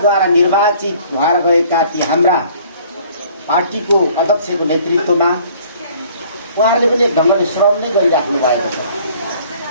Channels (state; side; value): inverted; both; correlation -0.55